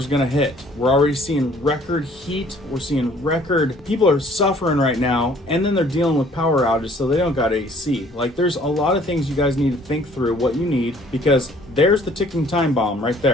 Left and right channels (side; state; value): both; normal; correlation 0.57